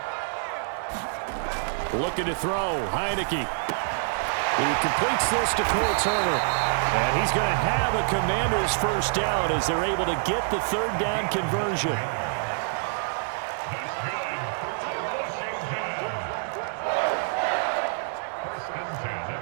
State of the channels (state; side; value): silent; left; digital silence